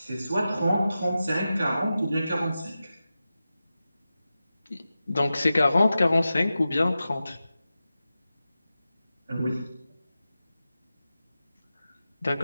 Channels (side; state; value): both; inverted; correlation -0.93